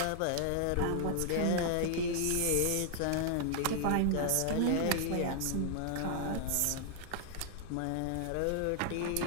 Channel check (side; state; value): both; different; correlation 0.00